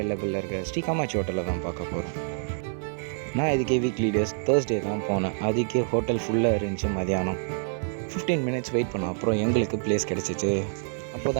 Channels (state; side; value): silent; left; 59 dB below the other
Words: இருக்க ஸ்ரீ காமாட்சி ஹோட்டலில் தான் பார்க்க போகிறோம். நான் இதுக்கே வீக்லி டேஸ் தேர்ஸ்டே தான் போனேன். அதுக்கே ஹோட்டல் ஃபுல்லாக இருந்துச்சு. மதியானம் 15 மினிட்ஸ் வெயிட் பண்ணோம். அப்புறம் எங்களுக்கு பிளேஸ் கிடச்சிச்சு. அப்போ